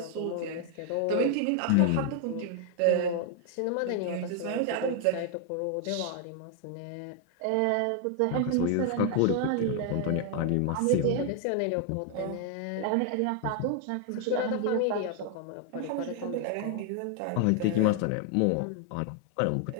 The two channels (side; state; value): both; different; correlation 0.00